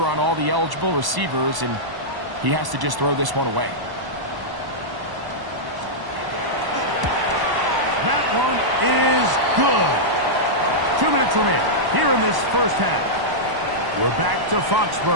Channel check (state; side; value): late; left; 1.0 ms